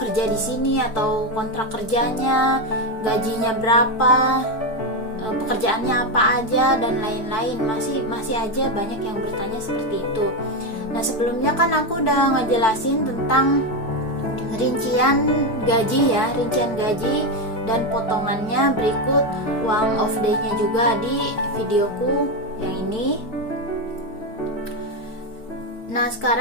di sini atau kontrak kerjanya, gajinya berapa, pekerjaannya apa aja dan lain-lain. Masih aja banyak yang bertanya seperti itu. Nah, sebelumnya kan aku udah ngejelasin tentang rincian gaji dan potongannya berikut uang off day-nya juga di videoku yang ini. Nah,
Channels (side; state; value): right; late; 4.6 ms